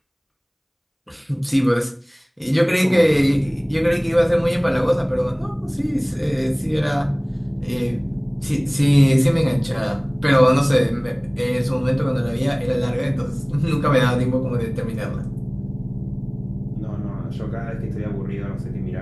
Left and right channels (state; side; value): identical; both; correlation 1.00